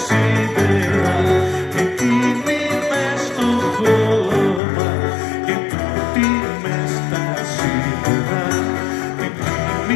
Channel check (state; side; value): drops out; right; at 4.6 s